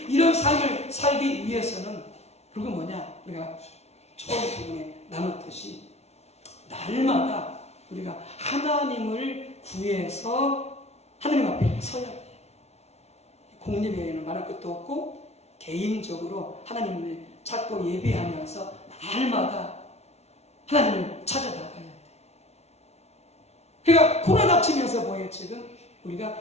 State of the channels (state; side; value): late; right; 0.31 ms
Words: 이런 삶을 살기 위해서는 그건 뭐냐? 우리가 처음 부분에 나눴듯이 날마다 우리가 하나님을 구해서 하나님 앞에 서야 돼요. 공립에는 말할 것도 없고 개인적으로 하나님을 찾고 예배하면서 날마다 하나님을 찾아 나가야 돼. 그러니까 코로나 닥치면서 뭐예요 지금?